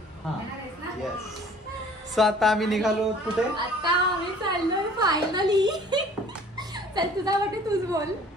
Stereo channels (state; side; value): normal; both; correlation 0.51